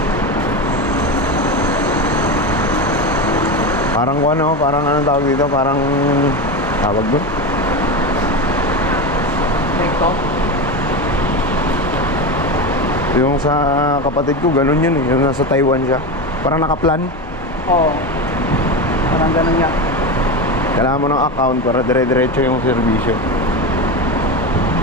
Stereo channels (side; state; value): both; normal; correlation 0.19